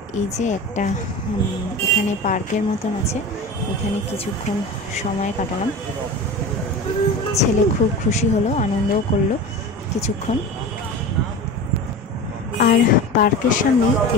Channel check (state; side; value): normal; both; correlation 0.31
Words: এই যে একটা এখানে পার্কের মতন আছে, এখানে কিছুক্ষণ সময় কাটালাম। ছেলে খুব খুশি হলো, আনন্দও করলো কিছুক্ষণ। আর পার্কের সামনেই